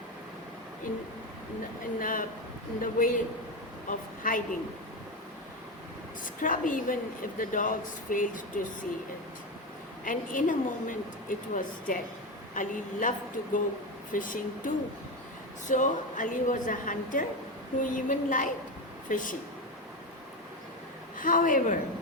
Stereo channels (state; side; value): normal; both; correlation 0.16